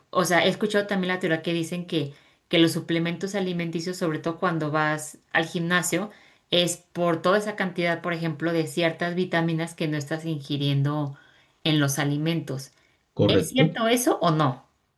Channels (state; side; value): identical; both; correlation 1.00